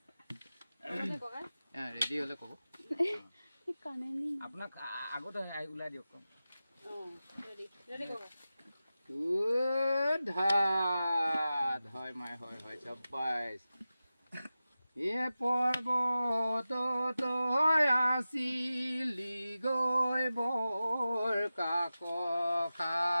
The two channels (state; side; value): inverted; both; correlation -0.94